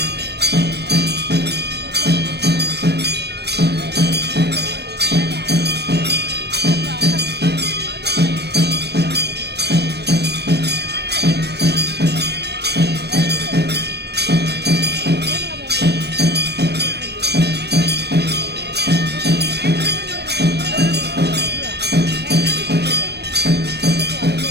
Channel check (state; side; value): late; left; 0.48 ms